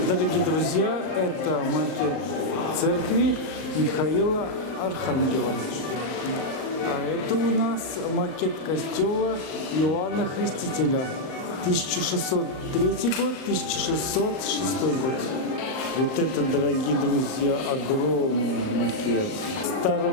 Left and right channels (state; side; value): late; right; 38 ms